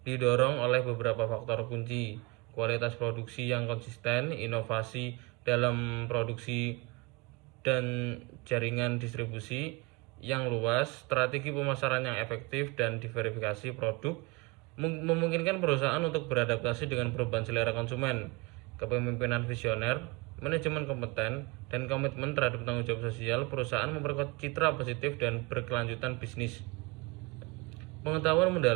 didorong oleh beberapa faktor kunci: kualitas produksi yang konsisten, inovasi dalam produksi dan jaringan distribusi yang luas, strategi pemasaran yang efektif, dan diverifikasi produk memungkinkan perusahaan untuk beradaptasi dengan perubahan selera konsumen. Kepemimpinan visioner, manajemen kompeten, dan komitmen terhadap tanggung jawab sosial perusahaan memperkuat citra positif dan berkelanjutan bisnis. Pengetahuan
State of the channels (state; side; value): quieter; left; 25.9 dB